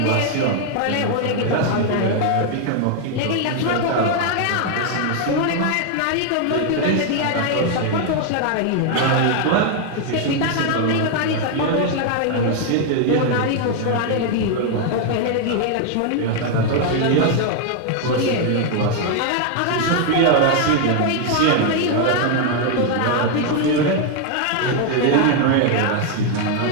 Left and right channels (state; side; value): different; both; correlation 0.00